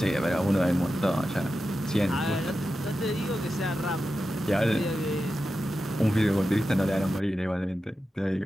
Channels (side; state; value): both; normal; correlation 0.91